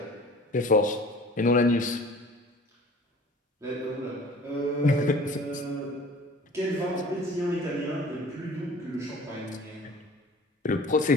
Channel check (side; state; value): both; normal; correlation 0.46